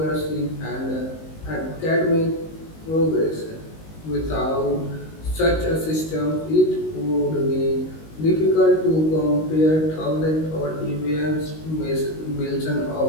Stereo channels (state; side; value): late; right; 19 ms